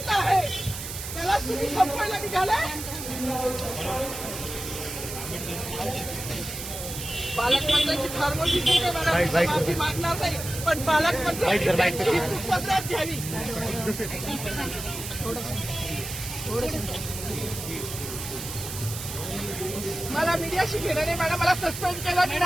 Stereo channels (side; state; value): right; noise; hiss, 8 dB below the sound